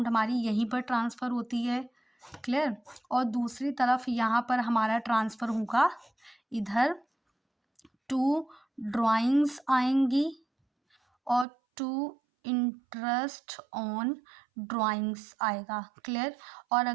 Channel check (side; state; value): left; drops out; at 11.5 s